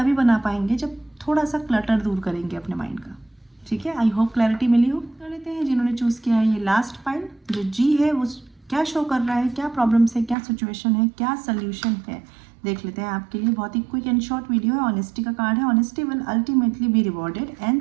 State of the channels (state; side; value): drops out; left; at 10.4 s